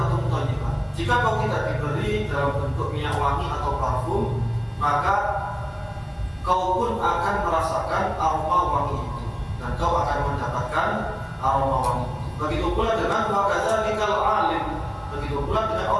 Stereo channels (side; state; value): both; identical; correlation 1.00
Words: thayyibah, jika kau tidak diberi dalam bentuk minyak wangi atau parfum, maka kau pun akan merasakan aroma wangi itu, dan kau akan mendapatkan aroma wangi itu. Begitu pula dengan wa kadzalikal alim, begitu pula dengan